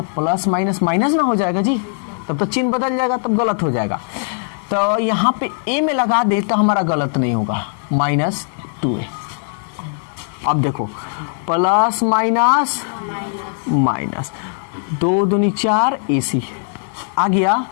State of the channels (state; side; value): silent; right; 63 dB below the other